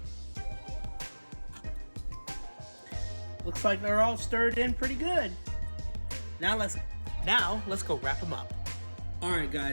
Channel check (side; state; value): both; inverted; correlation -1.00